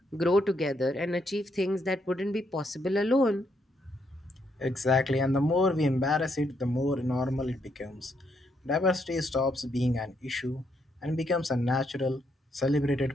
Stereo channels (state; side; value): normal; both; correlation 0.76